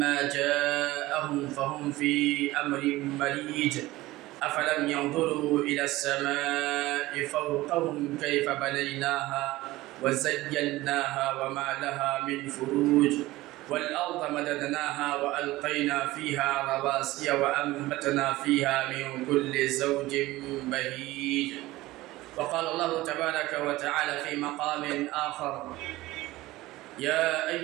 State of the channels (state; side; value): quieter; left; 18.2 dB